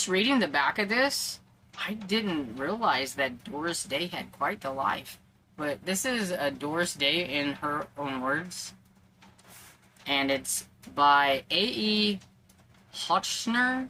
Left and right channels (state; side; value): identical; both; correlation 1.00